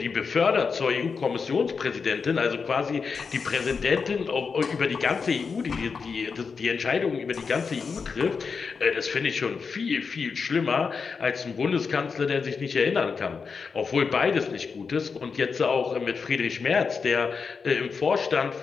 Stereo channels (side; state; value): right; quieter; 5.3 dB